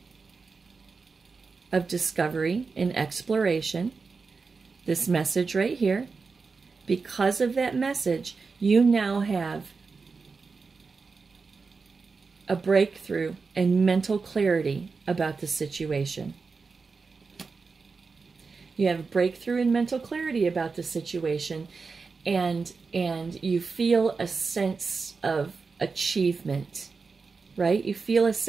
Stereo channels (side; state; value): left; quieter; 4.6 dB